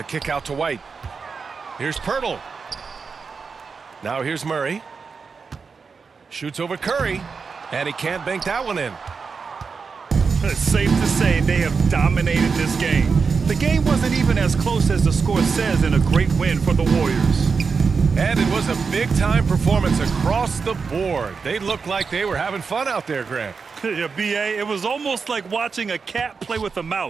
kick out to White. Here's Pirtle. Now here's Murray. Shoots over Curry. And he can't bank that one in. It's safe to say they have dominated this game. The game wasn't even as close as the score says in a great win for the Warriors. And it was a big-time performance across the board. They looked like they were having fun out there, Grant. Yeah, B.A., it was almost like watching a cat play with a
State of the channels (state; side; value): quieter; left; 5.2 dB